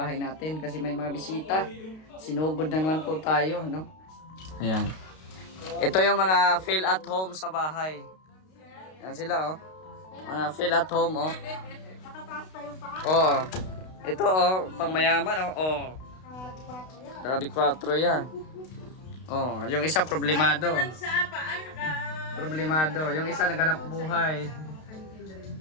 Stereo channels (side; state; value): right; late; 32 ms